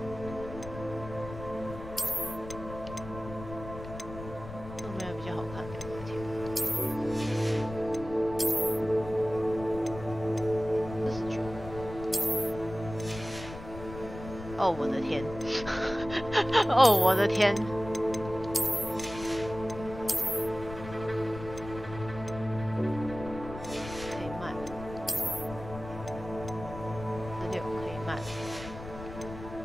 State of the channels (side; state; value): left; noise; rumble, 12 dB below the sound